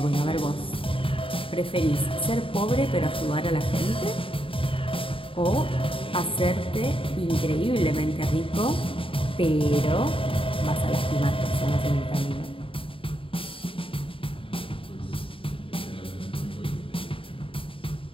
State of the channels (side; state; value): right; late; 0.26 ms